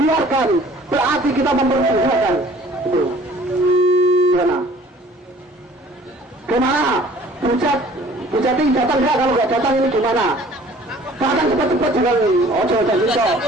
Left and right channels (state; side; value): normal; both; correlation 0.52